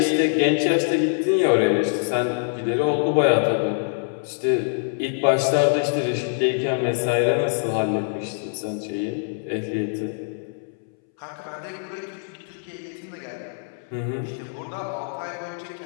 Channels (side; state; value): right; silent; 62 dB below the other